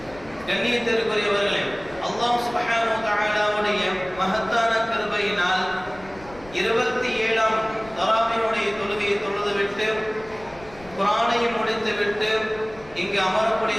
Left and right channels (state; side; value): noise; left; rumble, 21 dB below the sound